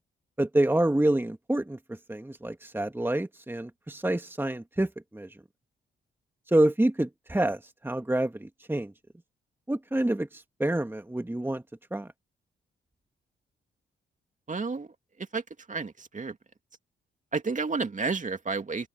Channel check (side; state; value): both; normal; correlation 0.88